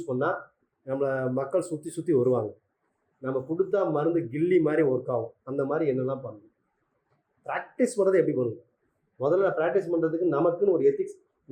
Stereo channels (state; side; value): identical; both; correlation 1.00